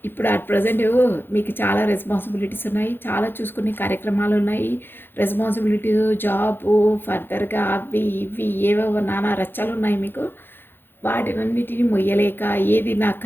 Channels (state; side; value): late; right; 0.10 ms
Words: ఇప్పుడు అట్ ప్రజెంట్ మీకు చాలా రెస్పాన్సిబిలిటీస్ ఉన్నాయి, చాలా చూసుకునే కార్యక్రమాలు ఉన్నాయి. రెస్పాన్సిబిలిటీస్, జాబు, ఫర్దర్గా అవి ఇవి ఏవేవో నానా రచ్చాలు ఉన్నాయి మీకు. వాటినన్నిటిని మొయ్యలేక ఏది నాకు